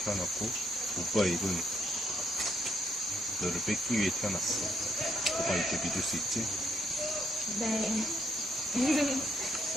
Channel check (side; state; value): both; normal; correlation 0.73